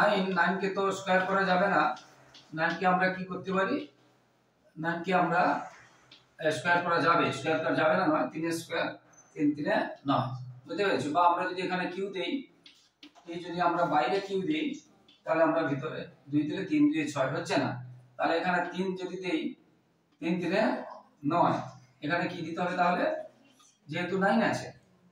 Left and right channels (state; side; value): identical; both; correlation 1.00